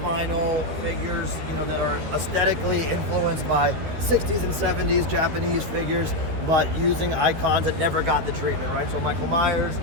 vinyl figures, that are aesthetically influenced by 60s and 70s Japanese figures, but using icons that never got the treatment, right? So Michael Myers,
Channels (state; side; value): late; left; 13 ms